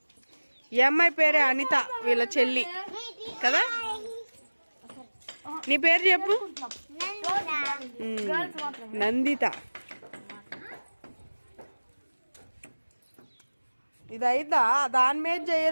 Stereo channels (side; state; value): both; inverted; correlation -1.00